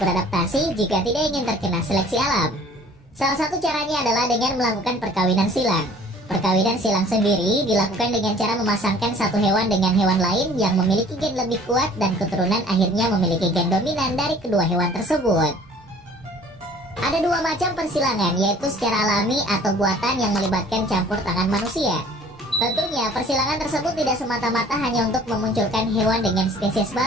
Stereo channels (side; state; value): both; normal; correlation 0.51